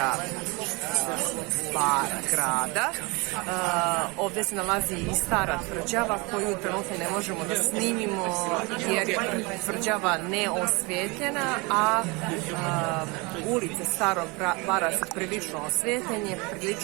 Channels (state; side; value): quieter; left; 27.3 dB